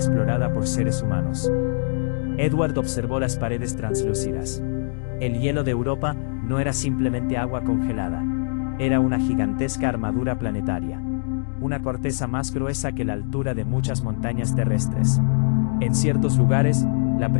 por seres humanos. Edward observó las paredes translúcidas. El hielo de Europa no era simplemente agua congelada. Era una gigantesca armadura planetaria. Una corteza más gruesa que la altura de muchas montañas terrestres. En ciertos lugares, la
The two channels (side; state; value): right; silent; digital silence